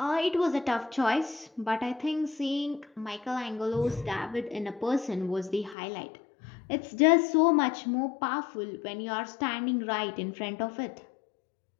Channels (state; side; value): drops out; right; at 5.8 s